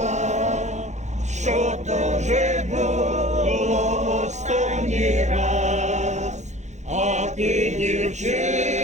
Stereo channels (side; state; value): left; late; 0.34 ms